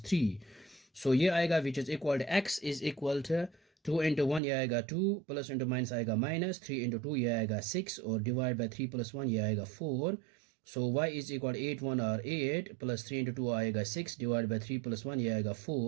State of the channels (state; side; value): drops out; left; at 4.4 s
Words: 3। So ये आएगा which is equal to x is equal to 2 into 1 ये आएगा 2, प्लस इंटू माइनस आएगा माइनस, 3 into 2 ये आएगा 6, और डिवाइड बाय 3 + 1 ये आएगा 4। सो y इज इक्वल 8 1 और 8, प्लस 3 into 2 आएगा 6, डिवाइड बाय 3 + 1 ये आएगा